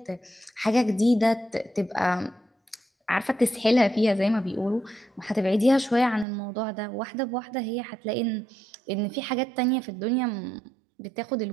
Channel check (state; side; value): drops out; left; at 6.2 s